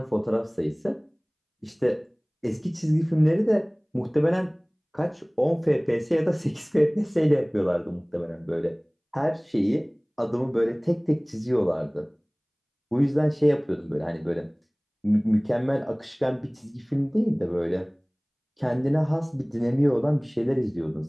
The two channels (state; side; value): identical; both; correlation 1.00